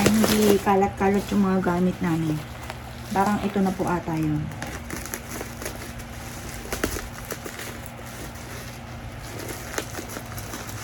hindi kalat-kalat yung mga gamit namin. Parang ito na po ata yun.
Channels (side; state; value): both; identical; correlation 1.00